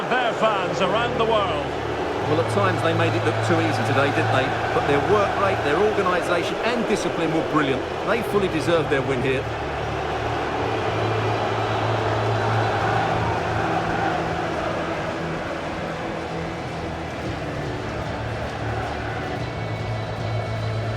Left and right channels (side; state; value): both; identical; correlation 1.00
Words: their fans around the world. Well, at times they made it look too easy today, didn't they? But their work rate, their organisation and discipline were brilliant. They fully deserved their win here.